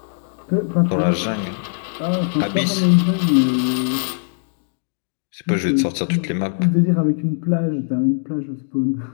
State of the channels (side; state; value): right; silent; digital silence